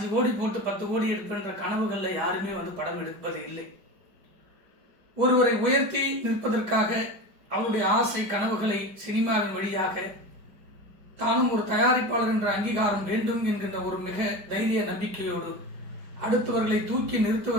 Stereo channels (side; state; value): left; late; 5.0 ms